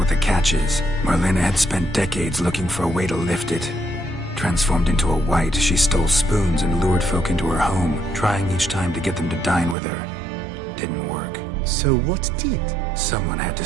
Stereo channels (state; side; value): drops out; left; at 9.8 s